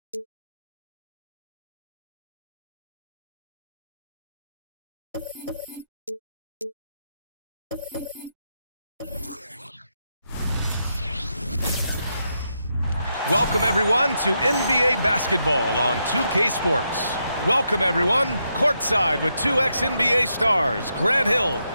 Welcome everyone to NBA basketball on 2K Sports. Welcome everyone, courtside with two ex-NBA stars, Grant Hill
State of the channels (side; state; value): both; inverted; correlation -0.82